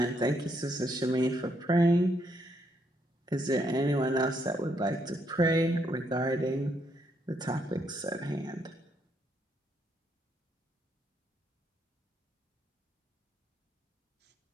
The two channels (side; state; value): both; normal; correlation 0.75